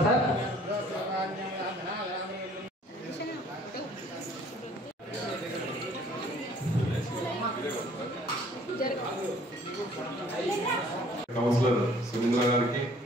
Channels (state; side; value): normal; both; correlation 0.56